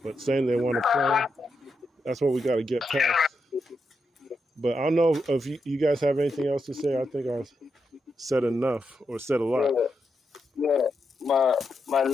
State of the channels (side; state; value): both; normal; correlation 0.84